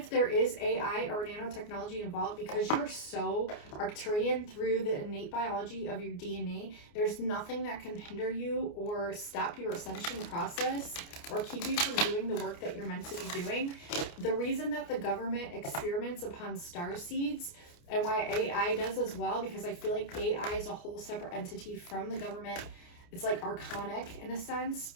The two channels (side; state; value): right; late; 29 ms